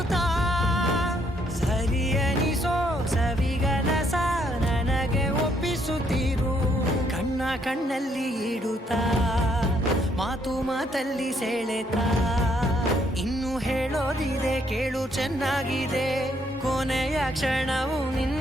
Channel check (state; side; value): normal; both; correlation 0.70